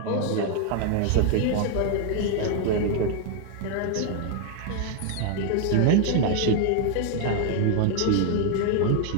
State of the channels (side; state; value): both; different; correlation 0.00